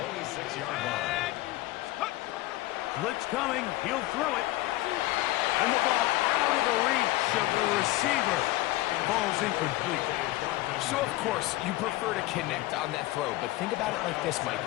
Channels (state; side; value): quieter; right; 17.7 dB